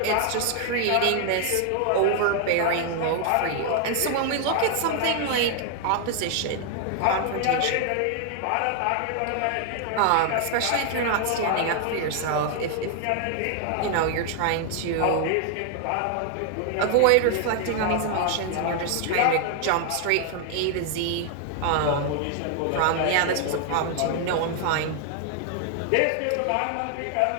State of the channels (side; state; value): both; different; correlation 0.00